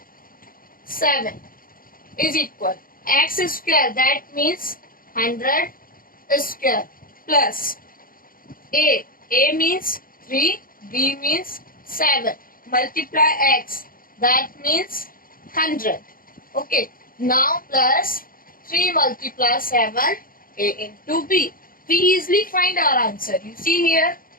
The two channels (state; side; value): late; right; 0.41 ms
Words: 7 is equal x square, that means 100 square plus a means 3, b means 7, multiply x, that means 100. Okay, now plus 3 multiply 7, a into b. We easily find our answer. You see here